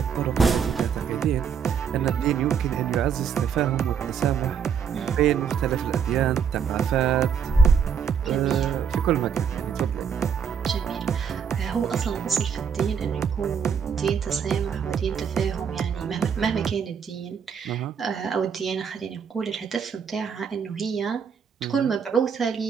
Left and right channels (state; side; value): quieter; left; 7.1 dB